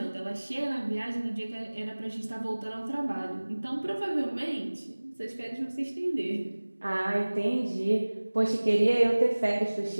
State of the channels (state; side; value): inverted; both; correlation -1.00